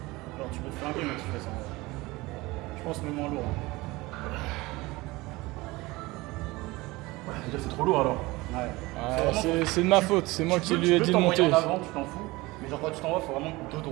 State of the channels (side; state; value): left; quieter; 21.3 dB